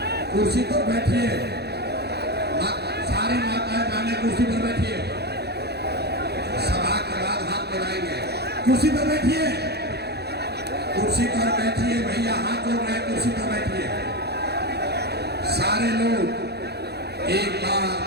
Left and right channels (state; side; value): late; left; 0.48 ms